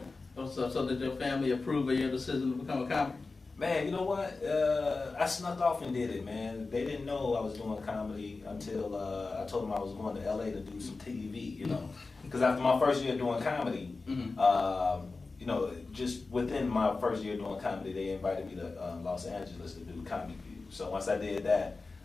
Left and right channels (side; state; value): right; quieter; 3.8 dB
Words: So did your family approve of your decision to become a comic? Man, you know what? I snuck off and did it, man. They didn't know I was doing comedy until I told them I was going to LA to do some TV, you know. Because after my first year doing comedy, you know, just within my first year doing comedy, they invited me to Los Angeles to do Comedy View. So once I did that,